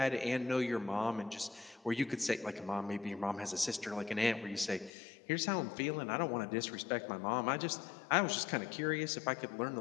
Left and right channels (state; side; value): drops out; right; at 4.9 s